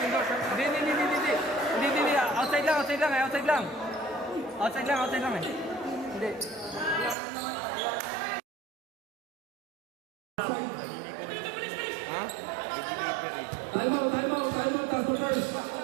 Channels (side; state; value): left; drops out; at 7.2 s